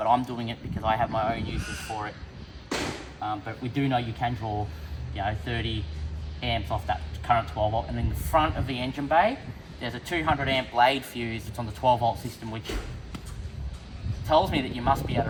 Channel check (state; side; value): identical; both; correlation 1.00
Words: I'm doing it because I have my own uses for it. But we do know you can draw, 30 amps off that current 12 volt, and in the front of the engine bay there's a 200 amp blade fuse that's on the 12 volt system, which tells me that you must be able to